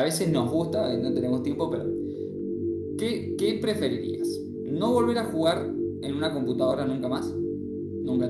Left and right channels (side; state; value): both; identical; correlation 1.00